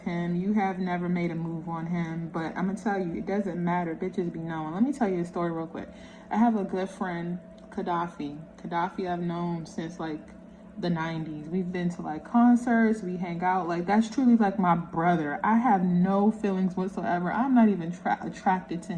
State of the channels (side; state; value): both; identical; correlation 1.00